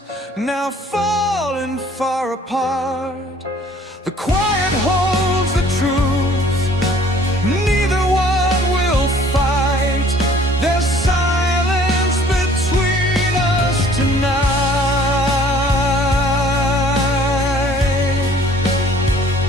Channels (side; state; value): both; normal; correlation 0.55